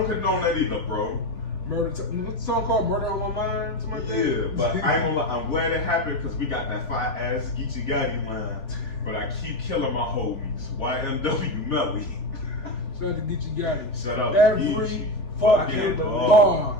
condone that either, bro. What's the song called? Murder on My Mind? Yeah, but I ain't gonna lie, I'm glad it happened because we got that fire ass Geechee Gotti line. But I keep killing my homies. YMW Melly. Shout out to Geechee Gotti. Shout out to every Geechee. fucking bar.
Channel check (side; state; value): right; late; 3.4 ms